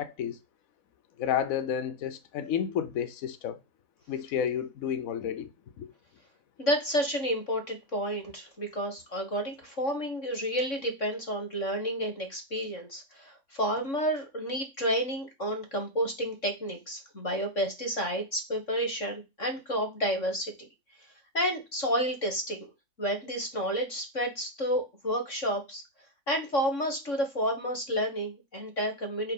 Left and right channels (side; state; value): right; late; 3.6 ms